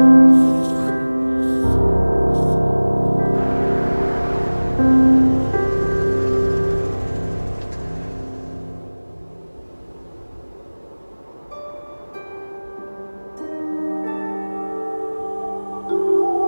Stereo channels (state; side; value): inverted; both; correlation -1.00